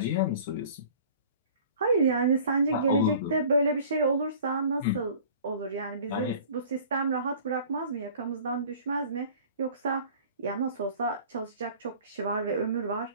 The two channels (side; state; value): both; inverted; correlation -0.47